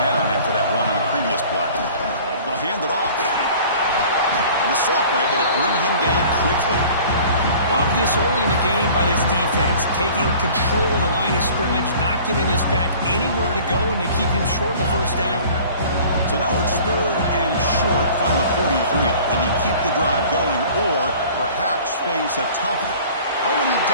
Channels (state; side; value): inverted; both; correlation -0.47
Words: down after that run on the previous play. They'll hand it off. And the sophomore able to bring him down quickly. Love this early in the game by this defense, taking control of the line of scrimmage, not giving this back anywhere to go, and they keep him short of the 1st down. So now it's 3rd and short from the 43. Can they keep the drive going or perhaps face a tough... Oh, and he